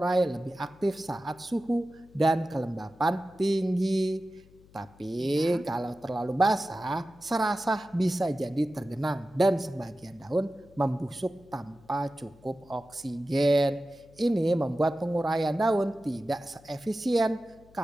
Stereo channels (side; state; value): left; noise; hum, 26 dB below the sound